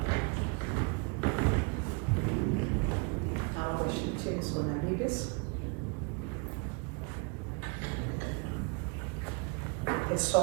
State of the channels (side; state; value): left; quieter; 33.9 dB